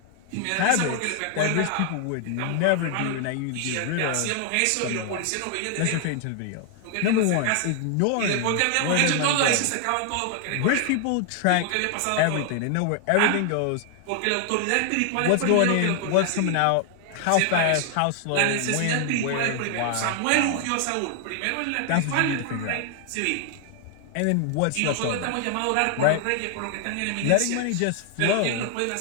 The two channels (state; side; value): different; both; correlation 0.00